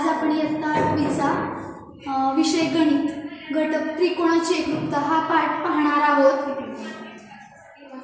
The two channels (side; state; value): both; identical; correlation 1.00